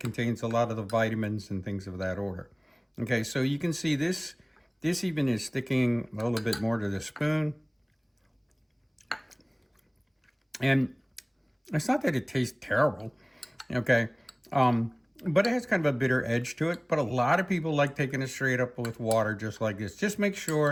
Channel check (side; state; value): both; identical; correlation 1.00